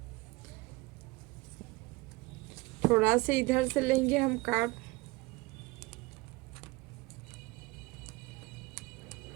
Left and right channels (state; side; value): quieter; left; 22.7 dB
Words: थोड़ा से इधर से लेंगे हम कार्ड।